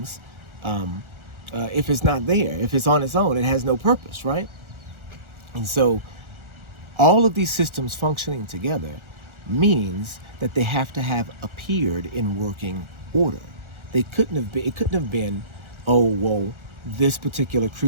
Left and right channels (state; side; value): late; left; 1.4 ms